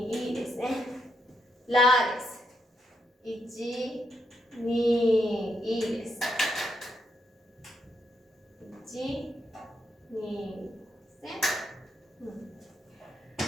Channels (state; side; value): normal; both; correlation 0.80